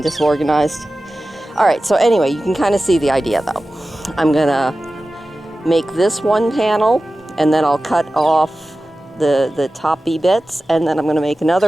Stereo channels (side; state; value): both; normal; correlation 0.95